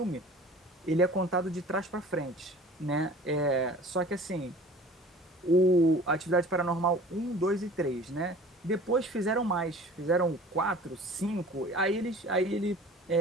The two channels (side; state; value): both; normal; correlation 0.45